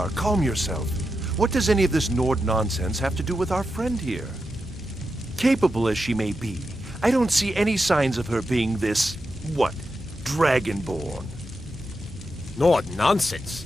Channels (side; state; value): both; normal; correlation 0.88